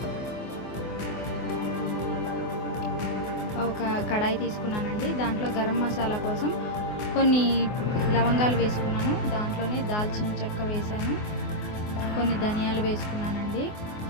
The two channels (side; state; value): right; late; 24 ms